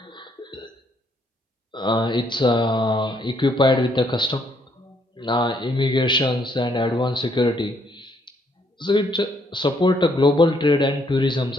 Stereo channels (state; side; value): normal; both; correlation 0.70